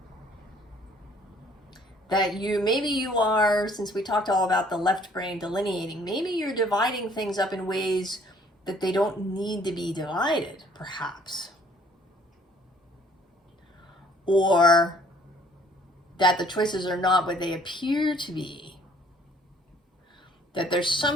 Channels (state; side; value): normal; both; correlation 0.59